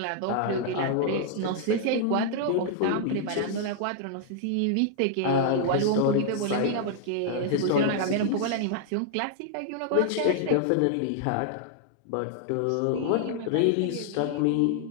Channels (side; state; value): both; different; correlation 0.00